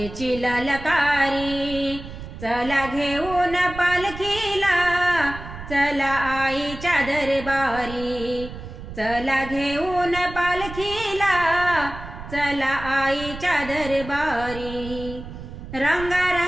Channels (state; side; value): noise; right; rumble, 12 dB below the sound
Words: ललकारी। चला घेऊन पालखीला, चला आईच्या दरबारी। चला घेऊन पालखीला, चला आईच्या दरबारी।